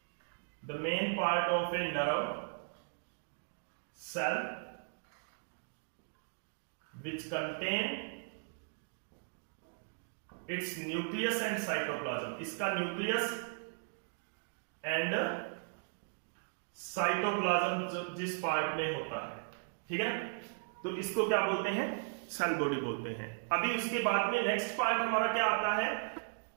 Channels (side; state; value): left; silent; digital silence